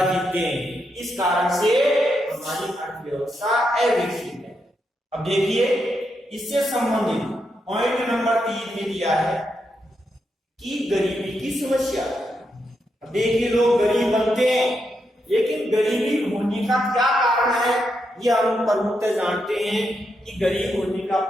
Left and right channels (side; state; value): both; normal; correlation 0.83